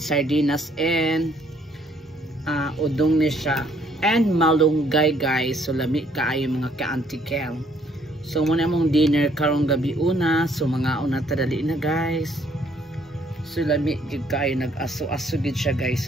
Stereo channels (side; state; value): both; normal; correlation 0.66